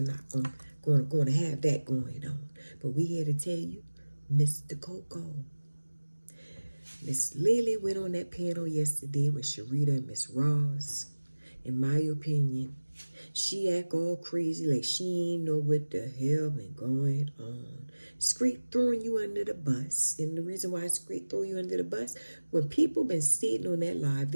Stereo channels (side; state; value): both; inverted; correlation -1.00